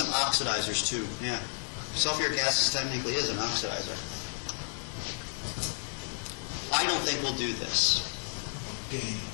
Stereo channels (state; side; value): silent; right; 56 dB below the other